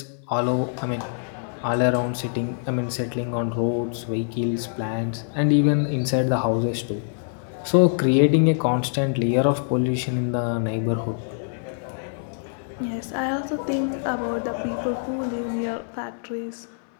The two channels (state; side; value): silent; right; 62 dB below the other